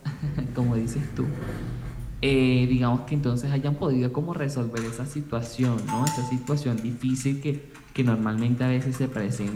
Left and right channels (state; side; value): identical; both; correlation 1.00